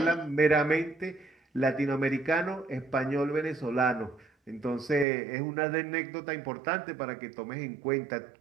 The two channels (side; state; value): left; drops out; at 5.1 s